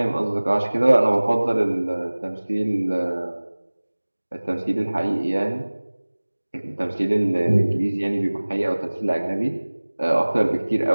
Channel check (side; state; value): both; inverted; correlation -1.00